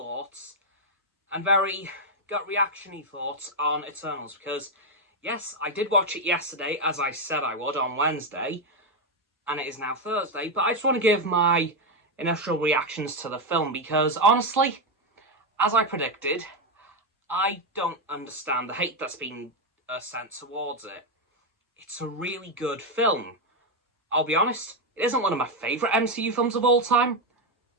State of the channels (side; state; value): both; normal; correlation 0.05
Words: and very gut reaction-y thoughts on Eternals, because yes, I did watch it yesterday, as I said I would, on Wednesday, and it is now Thursday, but I just want to give my initial reactions to the film, because honestly, as I predicted, I don't understand the hate that's been sent towards it. It's a really good film. I'll be honest, it isn't one of my favourite MCU films of all time,